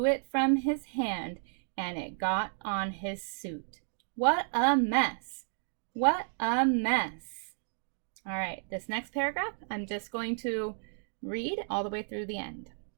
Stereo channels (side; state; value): left; silent; digital silence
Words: it from his hand and it got on his suit. What a mess. What a mess. All right, this next paragraph, I'm just going to read all the way through the end.